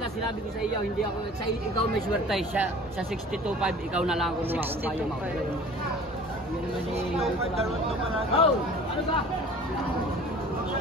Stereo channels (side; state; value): both; normal; correlation 0.45